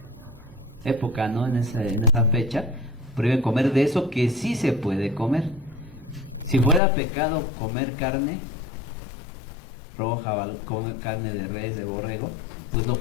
época, ¿no? En esa fecha, prohíben comer de eso que sí se puede comer. Si fuera pecado comer carne roja o comer carne de res, de borrego, pues lo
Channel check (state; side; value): drops out; right; at 6.8 s